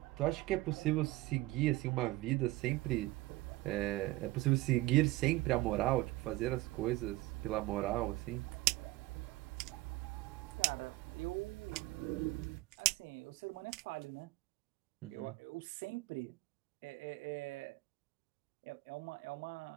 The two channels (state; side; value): quieter; left; 19.0 dB